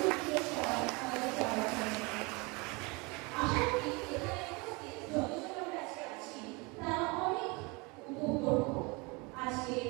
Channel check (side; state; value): left; quieter; 27.6 dB